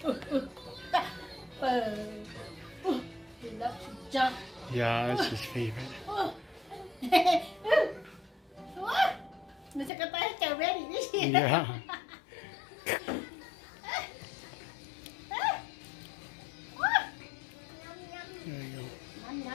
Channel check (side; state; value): right; drops out; at 9.9 s